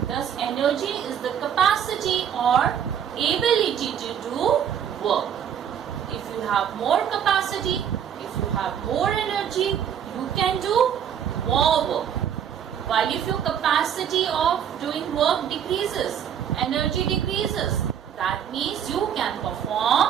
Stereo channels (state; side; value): quieter; left; 8.8 dB